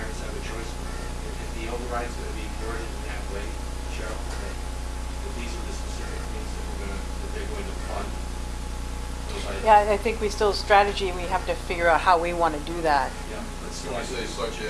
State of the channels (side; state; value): both; identical; correlation 1.00